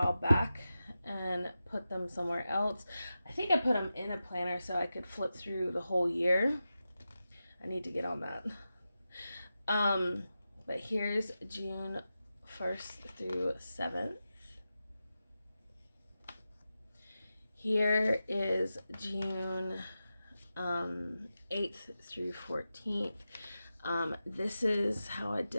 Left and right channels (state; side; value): inverted; both; correlation -0.92